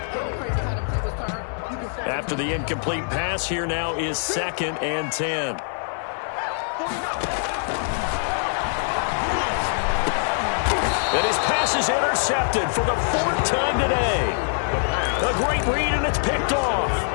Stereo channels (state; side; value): silent; right; digital silence